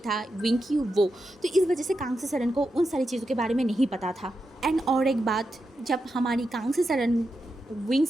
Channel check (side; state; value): both; normal; correlation 0.87